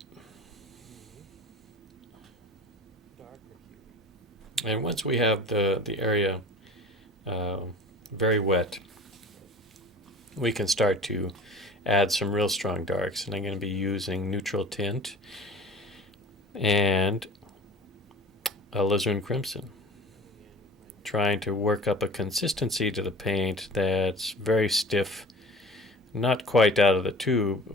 And once we have the area very wet, we can start to add some real strong darks. And I'm going to be using neutral tint and alizarin crimson, trying to work up a consistency to the paint that's very stiff, not quite out of the tube,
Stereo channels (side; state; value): both; normal; correlation 0.41